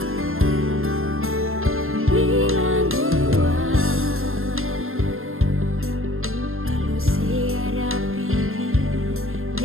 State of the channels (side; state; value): left; late; 0.61 ms